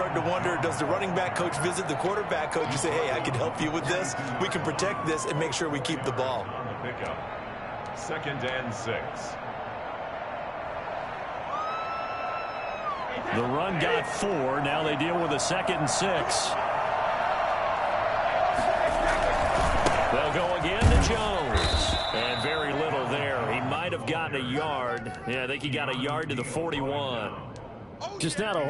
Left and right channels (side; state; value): both; identical; correlation 1.00